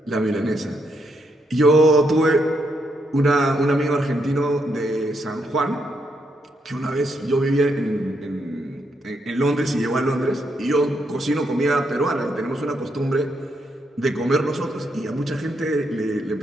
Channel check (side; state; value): both; normal; correlation 0.78